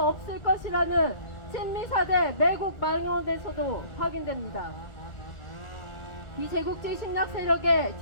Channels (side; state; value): right; late; 2.0 ms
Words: 것이라는 친미4대 매국 망언에서도 확인됩니다. 비제국주의 침략 세력의